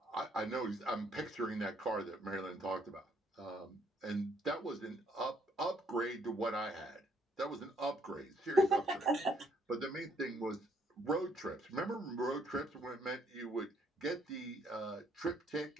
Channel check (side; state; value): both; normal; correlation 0.68